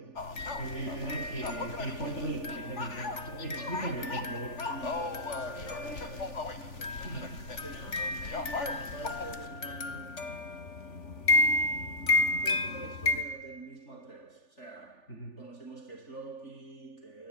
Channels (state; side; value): late; right; 3.4 ms